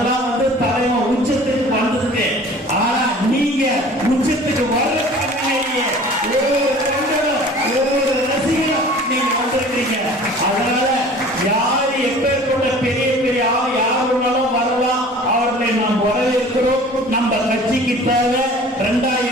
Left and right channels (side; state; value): both; normal; correlation 0.45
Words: தலைவன் உச்சத்துக்கு வந்ததுக்கு. ஆனா நீங்க உச்சத்துக்கு வர ஒவ்வொரு தொண்டரும் ஒவ்வொரு ரசிகரும் நீங்க வந்திருக்கீங்க. அதனால யாரு எப்பேற்பட்ட பெரிய பெரிய யாருனாலும் வரலாம், அவர்களை நாம் வரவேற்கிறோம். நம்ம கட்சிக்கு தேவை